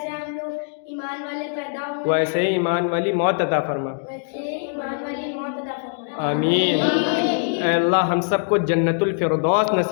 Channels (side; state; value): right; silent; digital silence